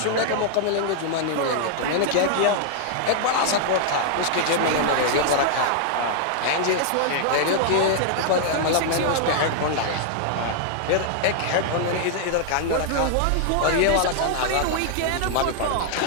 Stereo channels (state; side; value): different; both; correlation -0.01